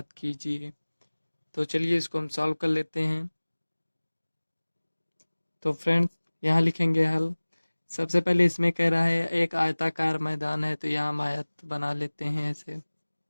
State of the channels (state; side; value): inverted; both; correlation -1.00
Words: कीजिए। तो चलिए इसको हम सॉल्व कर लेते हैं। तो फ्रेंड्स, यहाँ लिखेंगे हल। सबसे पहले इसमें कह रहा है एक आयताकार मैदान है, तो यहाँ हम आयत बना लेते हैं ऐसे।